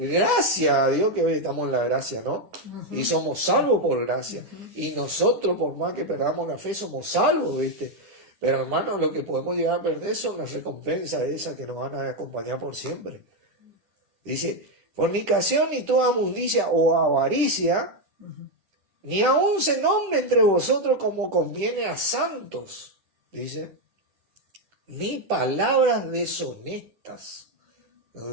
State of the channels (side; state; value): left; late; 10 ms